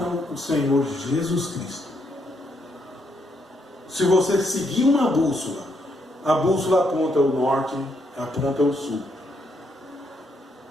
o Senhor Jesus Cristo. Se você seguir uma bússola, a bússola aponta o norte, aponta o sul,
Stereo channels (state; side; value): normal; both; correlation 0.76